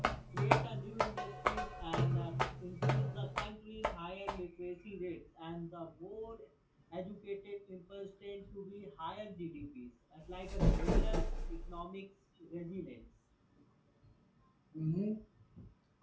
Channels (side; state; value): both; identical; correlation 1.00